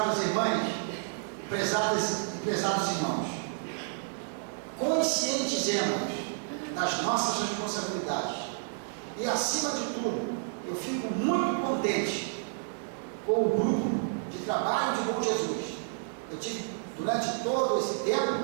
irmãs, prezados irmãos, conscientizemos das nossas responsabilidades. E acima de tudo, eu fico muito contente com o grupo de trabalho de Bom Jesus. Eu tive, durante todo esse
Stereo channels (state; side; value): silent; left; 58 dB below the other